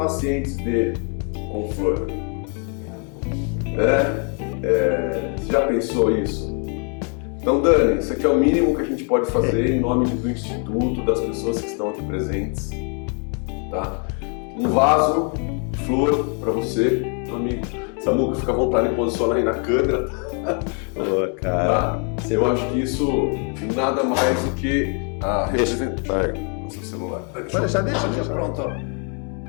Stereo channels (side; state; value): right; quieter; 39.5 dB